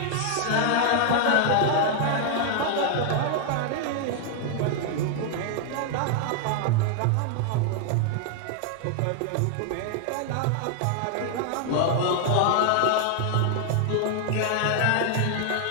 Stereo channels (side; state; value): both; different; correlation 0.00